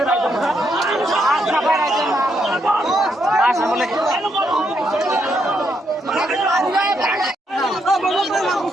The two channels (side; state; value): both; normal; correlation 0.78